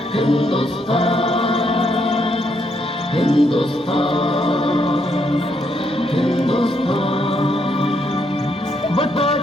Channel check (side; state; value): both; normal; correlation 0.75